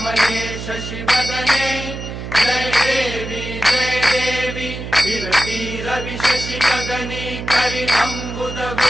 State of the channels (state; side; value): noise; right; hum, 8 dB below the sound